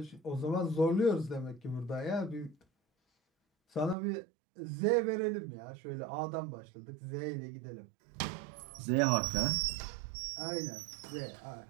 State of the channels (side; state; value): left; drops out; at 4.0 s